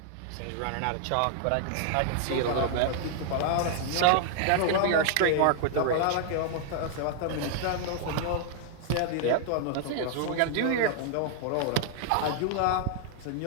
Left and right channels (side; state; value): both; different; correlation 0.00